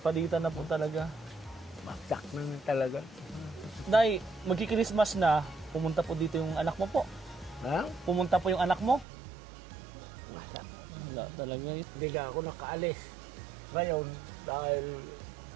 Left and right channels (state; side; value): drops out; left; at 9.1 s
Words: Palitan na po talaga. Baksak na talaga. Day, magki-Christmas na, pumunta po dito yung anak mo po. Ha? Pumunta po yung anak mo. Wala. Wala talaga. Hindi ka ako nakaalis. Ngayon, dahil